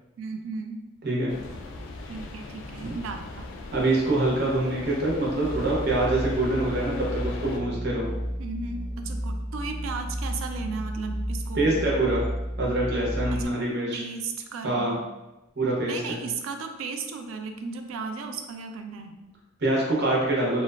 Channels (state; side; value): normal; both; correlation 0.51